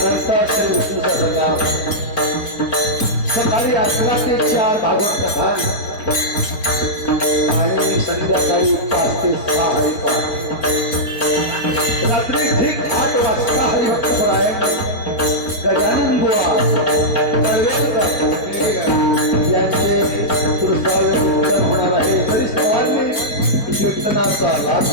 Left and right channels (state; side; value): late; right; 5.0 ms